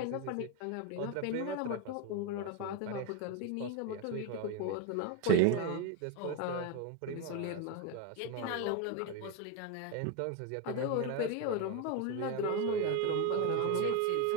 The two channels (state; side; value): different; both; correlation 0.02